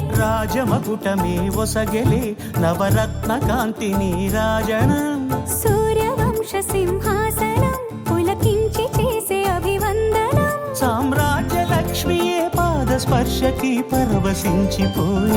రాజమకుటమే ఒసగెలే నవరత్న కాంతి నీరాజనం సూర్యవంశ సింహాసనం పులకించి చేసే అభివందనం సామ్రాజ్య లక్ష్మియే పాద స్పర్శకి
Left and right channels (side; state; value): both; identical; correlation 1.00